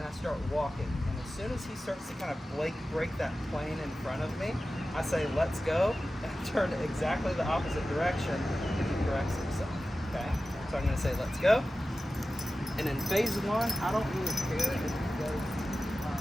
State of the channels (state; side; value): normal; both; correlation 0.94